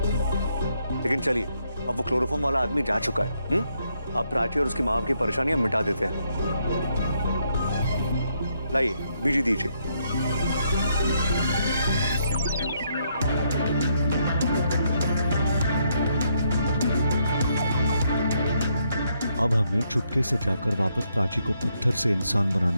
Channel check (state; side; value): inverted; both; correlation -0.75